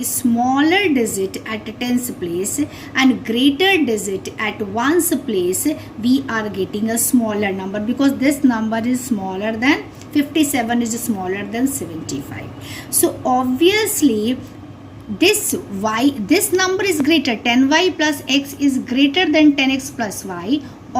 smaller digit at tens place and greater digit at ones place, we are getting a smaller number, because this number is smaller than 57 is smaller than 75. So obviously this number is greater, 10y plus x is greater than 10x plus y.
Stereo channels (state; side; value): identical; both; correlation 1.00